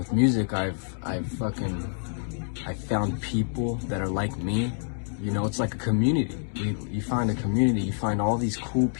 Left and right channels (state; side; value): silent; right; digital silence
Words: music, I've found people that are like me. You know, it's like a community. You find a community. You find all these cool